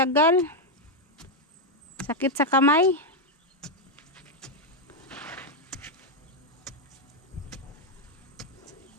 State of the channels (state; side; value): normal; both; correlation 0.02